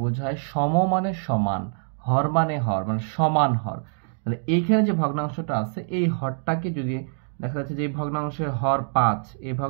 বোঝায় সম মানে সমান, হর মানে সমান হর। তাহলে এইখানে যে ভগ্নাংশটা আছে এই হরটাকে যদি দেখা যাচ্ছে যে এই ভগ্নাংশের হর 5, এই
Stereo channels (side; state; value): left; silent; digital silence